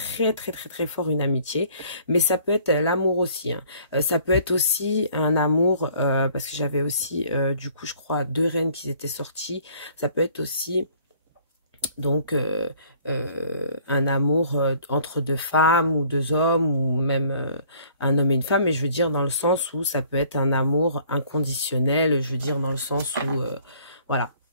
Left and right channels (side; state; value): both; inverted; correlation -0.57